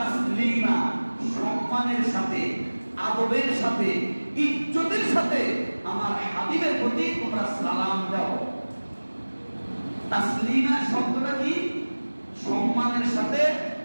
সম্মানের সাথে, আদবের সাথে, ইজ্জতের সাথে আমার হাবিবের প্রতি তোমরা সালাম দাও। তাসলিমা শব্দটা কি? সম্মানের সাথে,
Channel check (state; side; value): inverted; both; correlation -1.00